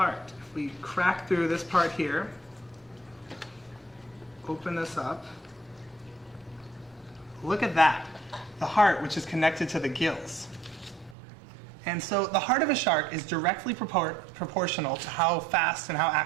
If we crack through this part here, open this up, look at that. The heart, which is connected to the gills. And so the heart of a shark is directly proportional to how fast and how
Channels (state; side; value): drops out; left; at 11.2 s